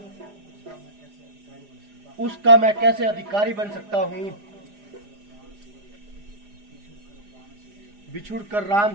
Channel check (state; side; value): late; left; 4.9 ms